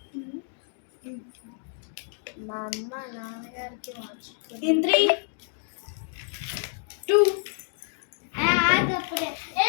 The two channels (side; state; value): right; silent; 59 dB below the other